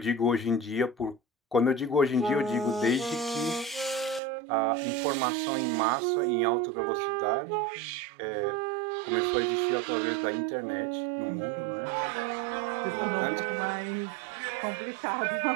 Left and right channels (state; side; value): drops out; left; at 4.2 s